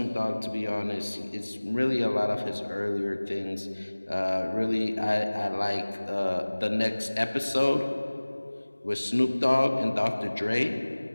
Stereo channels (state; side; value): inverted; both; correlation -1.00